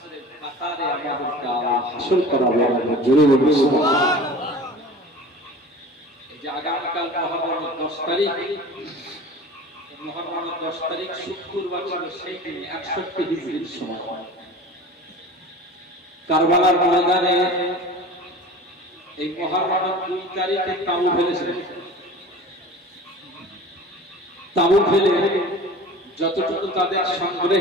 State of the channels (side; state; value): both; normal; correlation 0.39